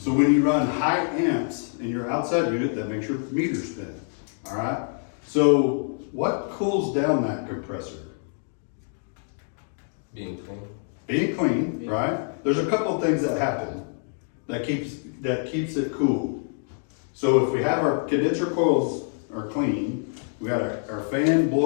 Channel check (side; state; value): right; silent; 61 dB below the other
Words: when you run high amps in your outside unit, that makes your meter spin, all right? So what cools down that compressor? Being clean. Being clean, right? There's a couple of things that happen that keeps it cool. So if we have our condenser coils are clean, we got our fan